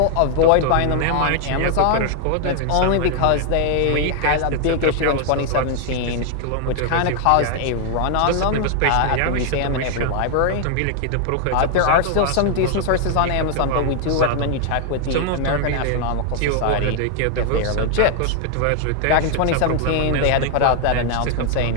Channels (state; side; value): different; both; correlation 0.00